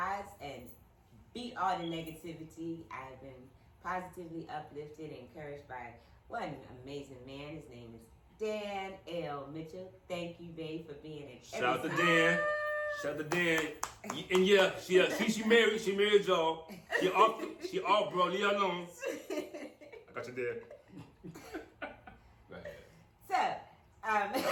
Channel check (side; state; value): both; identical; correlation 1.00